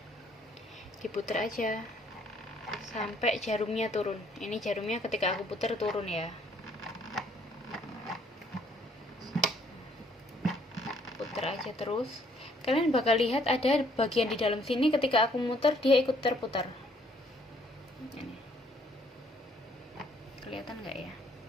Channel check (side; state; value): both; normal; correlation 0.64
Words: Diputer aja sampai jarumnya turun. Ini jarumnya ketika aku puter turun ya. Puter aja terus. Kalian bakal lihat ada bagian di dalam sini ketika aku muter dia ikut terputar. Ini. Kelihatan nggak ya?